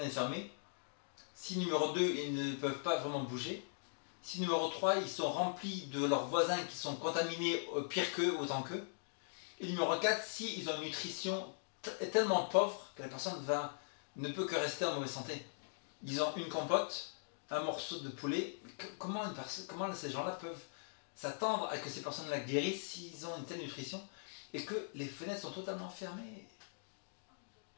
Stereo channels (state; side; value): silent; right; digital silence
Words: fermées, si numéro 2, ils ne peuvent pas vraiment bouger, si numéro 3, ils sont remplis de leurs voisins qui sont contaminés pire qu'eux, autant qu'eux, et numéro 4, si ils ont une nutrition tellement pauvre que la personne ne peut que rester en mauvaise santé. Ils ont une compote, un morceau de poulet. Comment ces gens-là peuvent s'attendre à que ces personnes-là guérissent s'ils ont une telle nutrition et que les fenêtres sont totalement fermées?